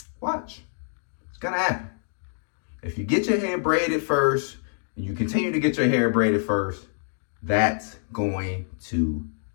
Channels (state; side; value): silent; right; digital silence